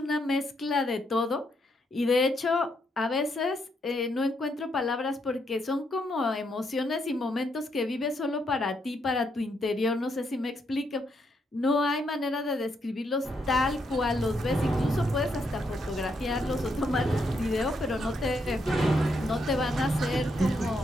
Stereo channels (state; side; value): normal; both; correlation 0.77